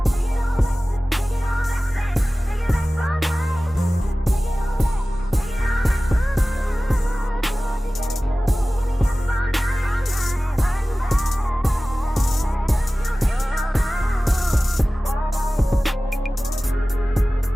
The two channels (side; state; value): both; normal; correlation 0.97